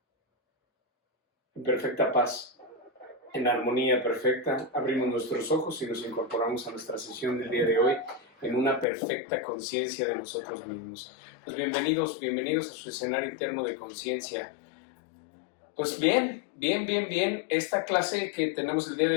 En perfecta paz, en armonía perfecta, abrimos nuestros ojos y nos incorporamos a nuestra sesión del día de hoy en una perfecta conciencia de nosotros mismos. Pues bienvenidos a su escenario interno de conciencia. Pues bien. Esta clase que tenemos el día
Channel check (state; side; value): drops out; right; at 8.8 s